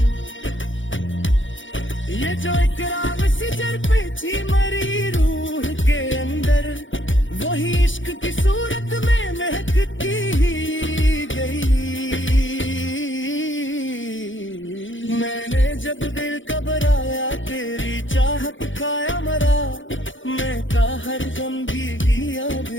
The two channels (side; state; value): right; late; 0.56 ms